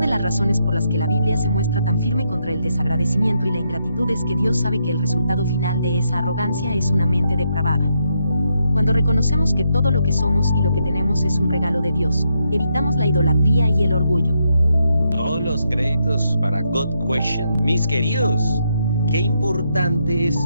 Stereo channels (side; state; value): both; inverted; correlation -0.79